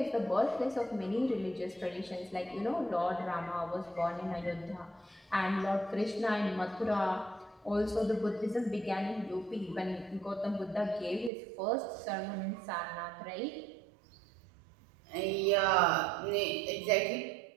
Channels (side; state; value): left; drops out; at 11.3 s